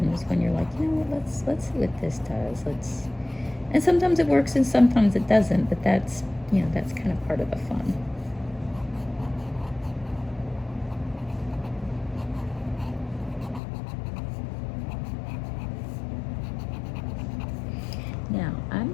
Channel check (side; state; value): right; drops out; at 13.6 s